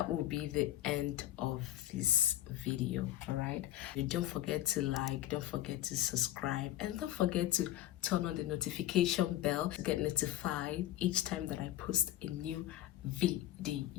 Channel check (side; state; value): right; quieter; 13.8 dB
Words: will be the end of this video. All right, don't forget to like, don't forget to subscribe, and don't forget to turn on the notification bell to get notified each time that I post a new